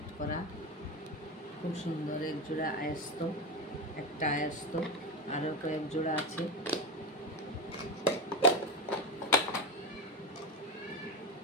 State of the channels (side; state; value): both; normal; correlation 0.17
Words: করা, খুব সুন্দর এক জোড়া আয়স্ত, একটা আয়স্ত, আরও কয়েক জোড়া আছে।